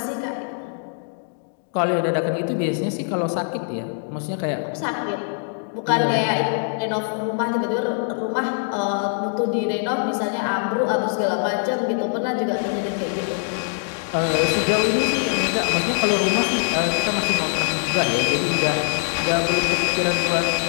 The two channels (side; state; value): right; silent; digital silence